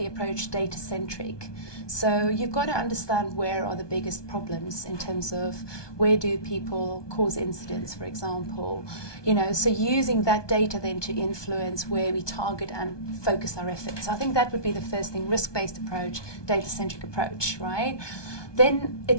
approach data-centric. So you've got to understand where are the biggest problems in terms of where do people cause incidents, for example. You know, so using that data then to influence where we target and focus our efforts. I think that would be the first thing: risk-based approach, data-centric approach, right? Then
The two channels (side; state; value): right; late; 1.2 ms